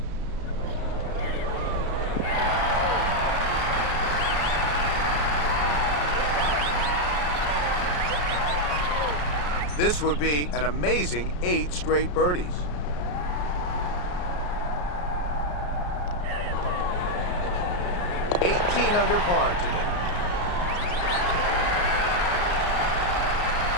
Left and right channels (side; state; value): right; late; 34 ms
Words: This would be an amazing 8 straight birdies. Under par today.